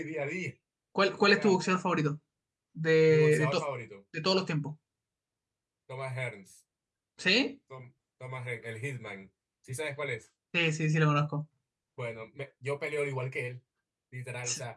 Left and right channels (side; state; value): both; identical; correlation 1.00